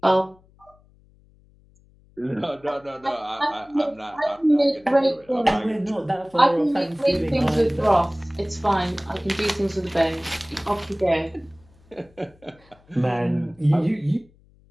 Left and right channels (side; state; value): left; noise; hum, 30 dB below the sound